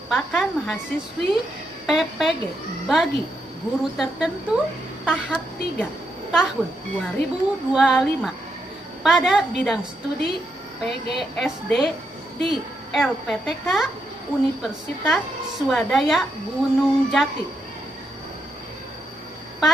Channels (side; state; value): both; normal; correlation 0.81